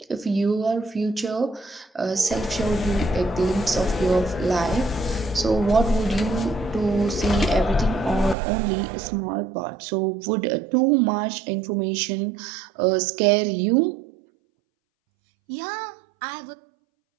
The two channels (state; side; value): drops out; left; at 8.3 s